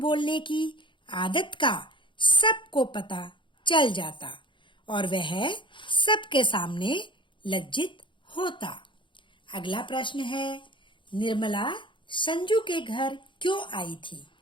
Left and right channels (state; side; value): late; right; 0.24 ms